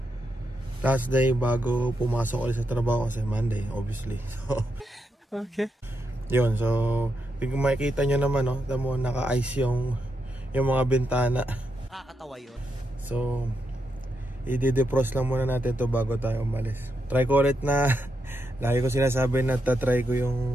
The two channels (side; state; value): both; normal; correlation 0.83